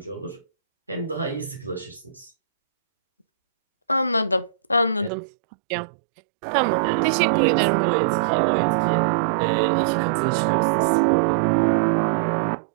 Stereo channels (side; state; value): left; drops out; at 5.1 s